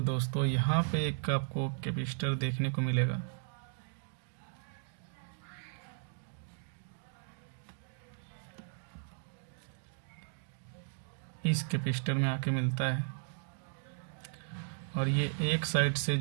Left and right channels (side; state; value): left; silent; digital silence